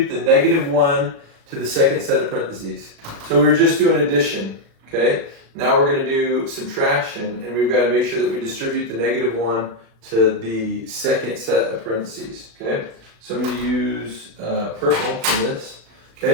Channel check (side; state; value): left; late; 36 ms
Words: the negative 1 to the second set of parentheses. So we're just doing addition, okay? Now we're going to do subtraction, and we've got to make sure that we distribute the negative 1 to the second set of parentheses, okay? So I'm going to use purple for this.